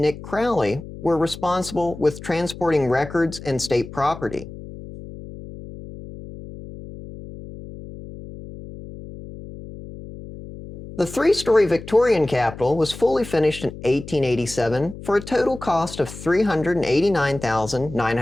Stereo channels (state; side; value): noise; left; hum, 13 dB below the sound